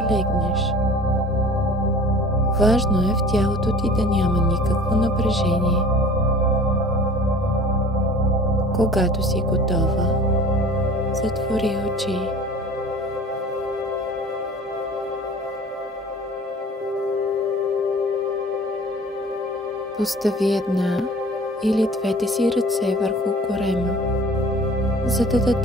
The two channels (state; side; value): normal; both; correlation 0.44